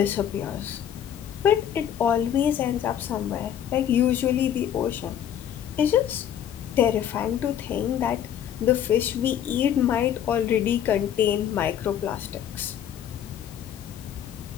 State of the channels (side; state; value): right; quieter; 9.7 dB